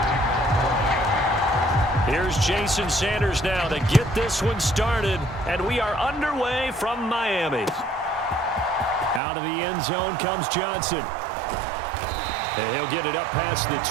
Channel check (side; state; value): left; drops out; at 9.2 s